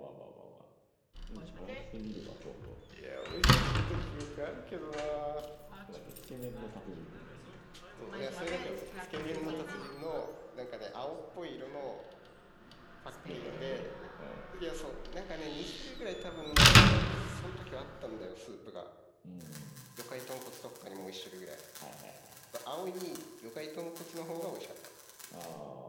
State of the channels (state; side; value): identical; both; correlation 1.00